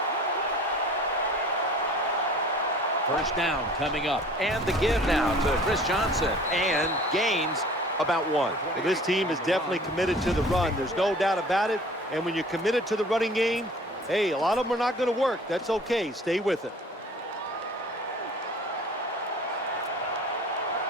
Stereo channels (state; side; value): normal; both; correlation 0.47